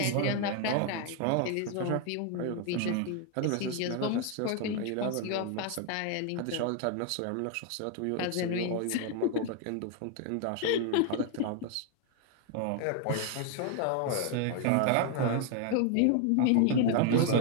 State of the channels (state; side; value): different; both; correlation 0.01